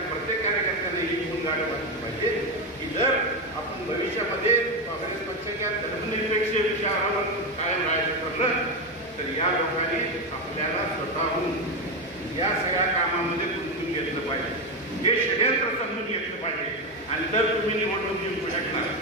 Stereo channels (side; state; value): both; normal; correlation 0.12